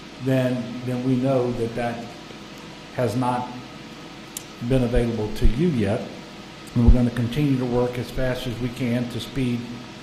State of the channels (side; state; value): both; identical; correlation 1.00